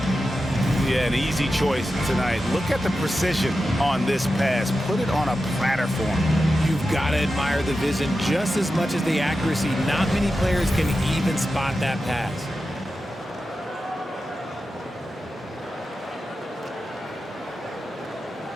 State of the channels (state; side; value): normal; both; correlation 0.91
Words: Yeah, an easy choice tonight. Look at the precision on this pass. Put it on a platter form. You've got to admire the vision just as much as the accuracy. Not many players can even spot that pass.